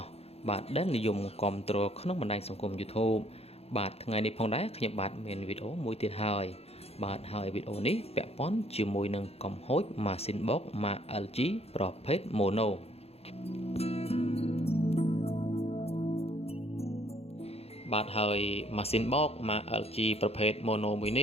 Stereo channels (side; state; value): right; late; 0.29 ms